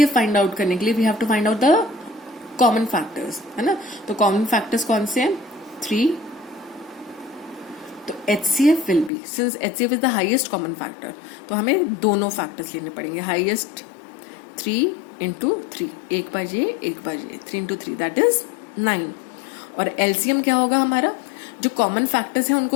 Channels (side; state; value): right; drops out; at 9.1 s